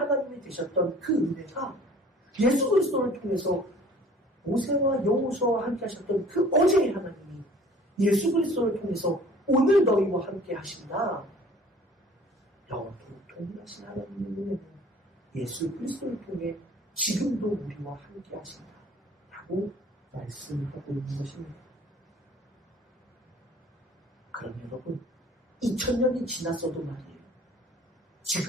되셨던 그 은혜가 예수 그리스도를 통해서 모세와 여호수아와 함께 하셨던 그 어제의 하나님이 예수 그리스도를 통해서 오늘 너희와 함께 하신다. 영원토록 동일하신 하나님의 은혜는 예수 그리스도를 통해 지금도 우리와 함께 하신다. 라고 말씀하고 있는 것입니다. 그럼 여러분, 2000년이 지났어도 말이에요.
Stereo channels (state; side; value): normal; both; correlation 0.50